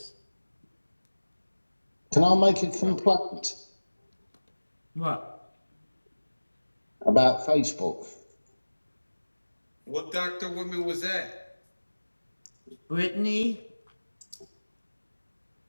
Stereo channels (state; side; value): inverted; both; correlation -1.00